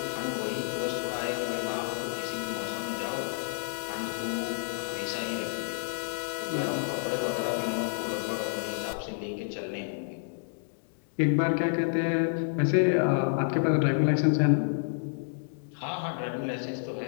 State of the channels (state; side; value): silent; right; digital silence